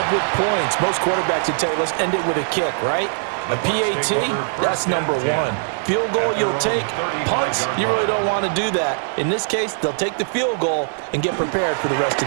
with points. Most quarterbacks would tell you, let's end it with a kick, right? A PAT, that's number 1. Field goal, you'll take. Punts, you really don't want to do that. In this case, they'll take the field goal and get prepared for the rest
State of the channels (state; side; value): silent; left; 56 dB below the other